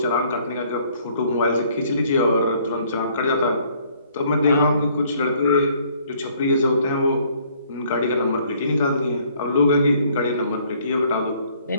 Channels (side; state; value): both; inverted; correlation -0.62